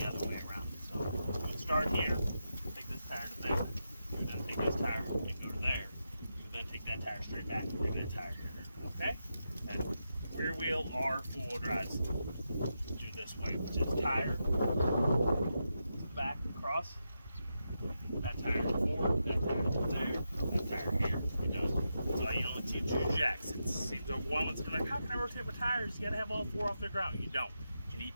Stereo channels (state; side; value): inverted; both; correlation -0.87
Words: other way around. So you start here, take this tire to there, you then take this tire and go to there. You then take that tire straight back and bring that tire here. Okay? And rear wheel or four-wheel drives do this way, which is tire back across, that tire forward, that tire there, that tire here. You're done. So you only teach your jacks. It seems overwhelming to be like, how can I rotate my tires? You gotta have all 4 off the ground. You don't. You need